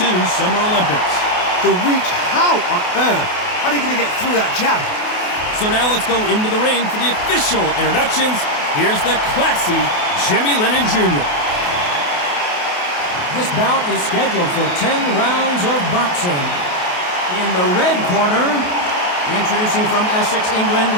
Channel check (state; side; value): late; right; 28 ms